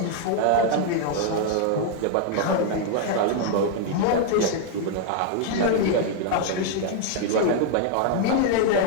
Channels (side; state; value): both; different; correlation 0.00